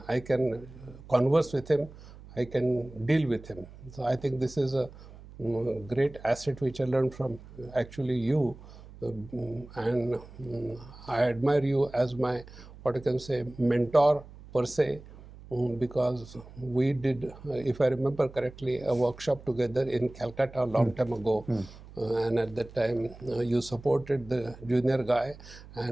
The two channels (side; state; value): right; noise; hum, 18 dB below the sound